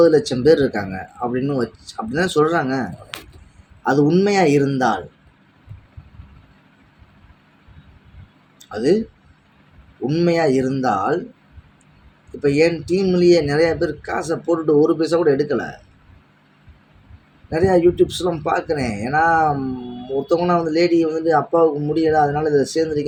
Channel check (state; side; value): identical; both; correlation 1.00